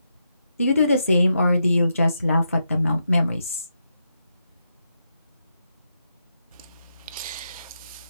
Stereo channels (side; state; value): both; inverted; correlation -0.83